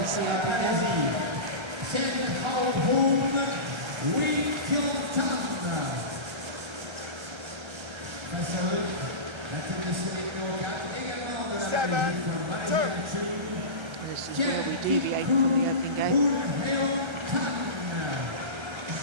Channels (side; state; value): left; late; 1.3 ms